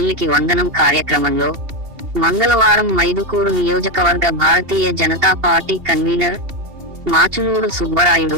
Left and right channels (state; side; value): late; left; 2.8 ms